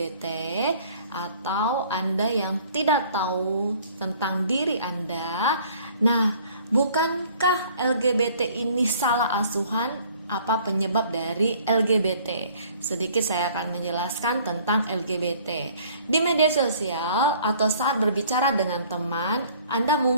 atau Anda yang tidak tahu tentang diri Anda, nah, bukankah LGBT ini salah asuhan? Apa penyebab dari LGBT? Sedikit saya akan menjelaskan tentang LGBT. Di media sosial atau saat berbicara dengan teman, Anda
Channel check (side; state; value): both; inverted; correlation -0.55